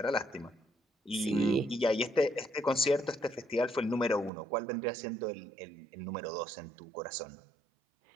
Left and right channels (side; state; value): left; drops out; at 4.3 s